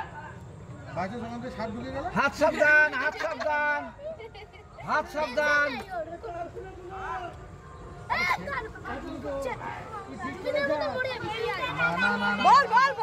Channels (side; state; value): both; identical; correlation 1.00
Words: বাইরে সঙ্গে দিয়ে শার্ট ঢুকে গেল হাত সাবধান হাত সাবধান হাত সাবধান না না না বল বল